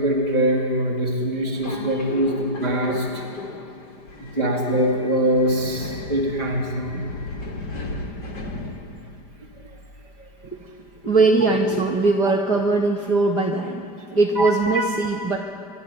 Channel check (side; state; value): right; late; 5.0 ms